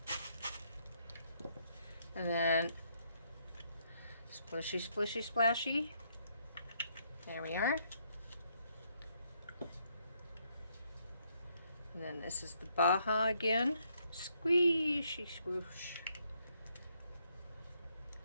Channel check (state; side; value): inverted; both; correlation -0.73